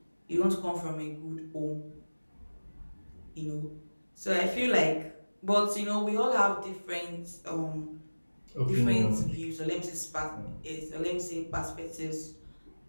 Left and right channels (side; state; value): both; inverted; correlation -1.00